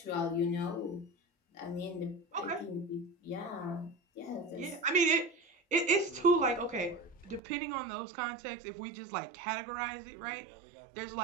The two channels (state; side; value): drops out; left; at 7.4 s